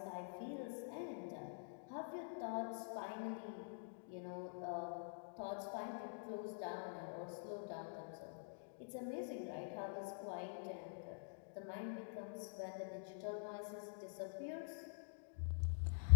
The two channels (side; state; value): right; silent; digital silence